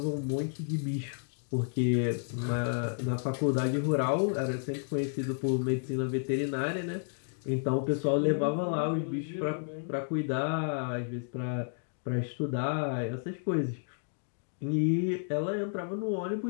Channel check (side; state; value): right; silent; digital silence